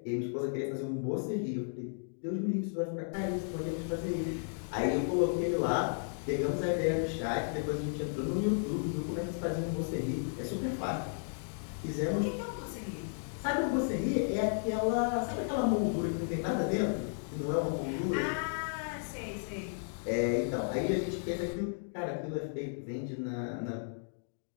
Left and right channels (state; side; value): silent; right; digital silence